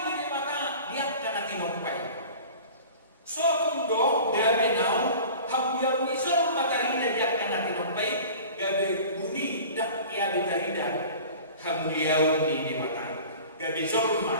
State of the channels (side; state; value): both; inverted; correlation -0.41